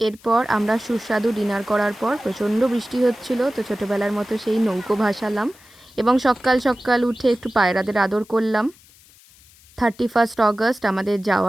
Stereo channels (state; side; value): noise; left; hiss, 26 dB below the sound